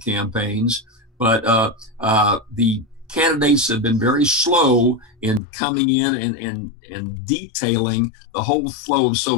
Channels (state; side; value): drops out; right; at 5.4 s